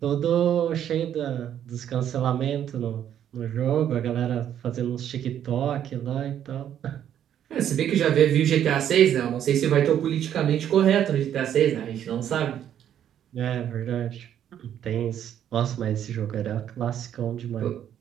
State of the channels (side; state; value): left; quieter; 10.1 dB